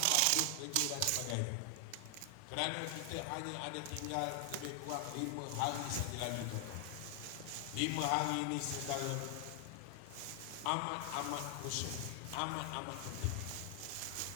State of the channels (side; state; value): both; different; correlation 0.00